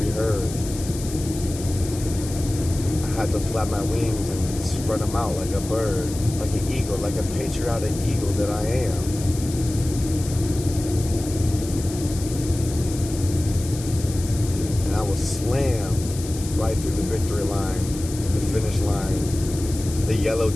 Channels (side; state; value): left; noise; hiss, 12 dB below the sound